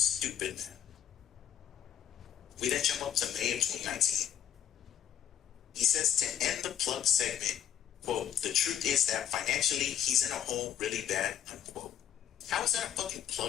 man. We then jump up to May of 2019. He says to end the plug segment, quote, the truth is that financially he's in a hole really bad, unquote. How is that a fucking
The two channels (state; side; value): quieter; right; 10.0 dB